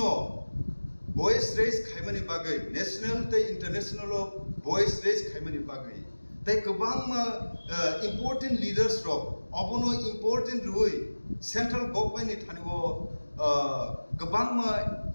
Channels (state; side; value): inverted; both; correlation -1.00